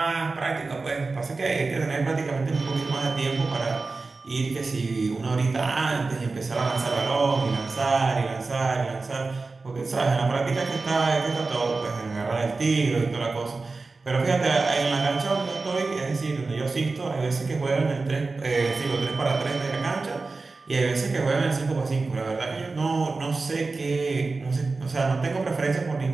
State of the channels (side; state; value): left; quieter; 3.8 dB